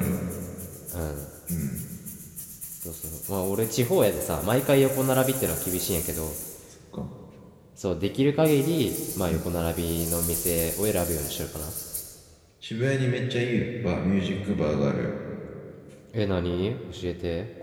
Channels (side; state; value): both; identical; correlation 1.00